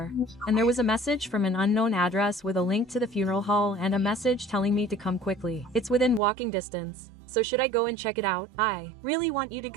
and there was a message from an unknown address with a link to the funeral hall and a message telling me to come quickly. It's within walking distance, so should I go and check it out? I really want you to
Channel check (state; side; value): drops out; left; at 6.2 s